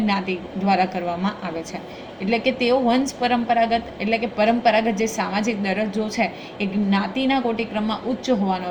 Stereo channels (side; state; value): both; identical; correlation 1.00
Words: દ્વારા કરવામાં આવે છે. એટલે કે તેઓ વંશ પરંપરાગત એટલે કે પરંપરાગત જે સામાજિક દરજ્જો છે એ જ્ઞાતિના કોટિક્રમમાં ઉચ્ચ